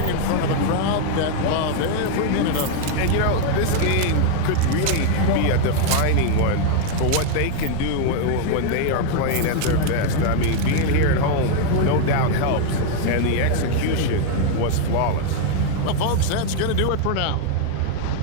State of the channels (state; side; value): different; both; correlation 0.00